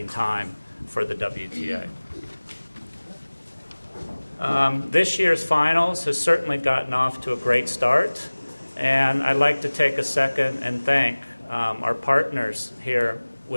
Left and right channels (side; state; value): both; inverted; correlation -1.00